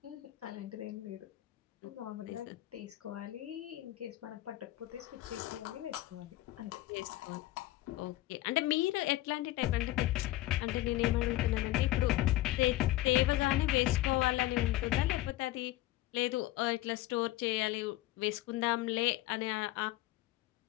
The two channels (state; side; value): quieter; right; 16.3 dB